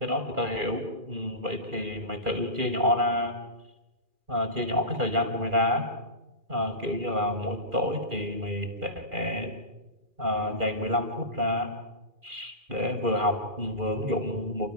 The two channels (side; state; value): left; late; 2.4 ms